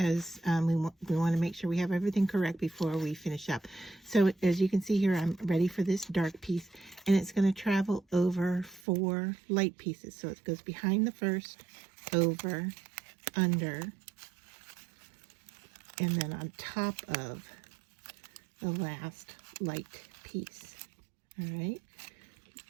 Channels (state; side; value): drops out; left; at 8.8 s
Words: we want to make sure we have everything correct before we finish up. So as you can see here, I'm ready for this dark piece, and it's going to travel over 4 light pieces. So it goes behind the first, over, under, and then on top of the last light piece. All right.